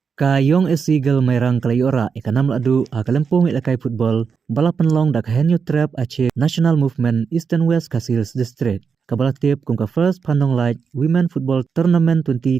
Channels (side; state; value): left; quieter; 5.9 dB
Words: Kayong Seagull Mayrang Kalayora ikanam ladu akalempung ilakai football balapan long dak henyu trap ache National Movement Eastern West Kasils District. Kabalatip kung ka first Pandong Light Women Football Tournament